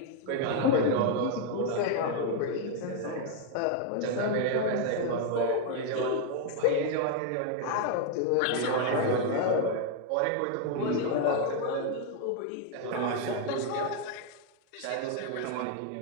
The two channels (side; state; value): both; different; correlation 0.00